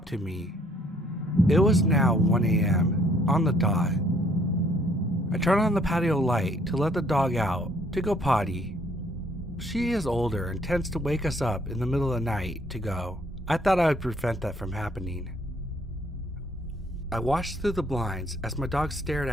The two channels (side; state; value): both; normal; correlation 0.64